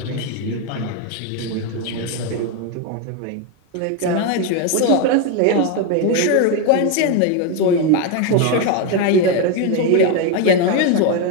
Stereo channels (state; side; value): different; both; correlation 0.02